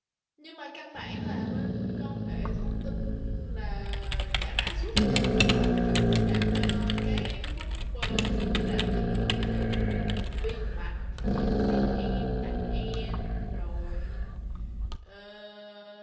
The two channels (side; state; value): both; identical; correlation 1.00